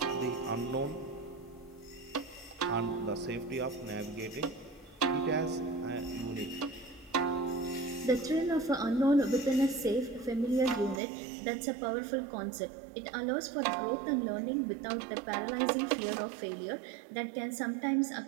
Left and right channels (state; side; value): drops out; left; at 11.0 s